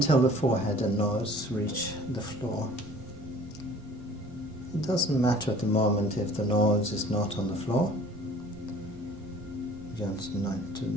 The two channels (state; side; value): normal; both; correlation 0.50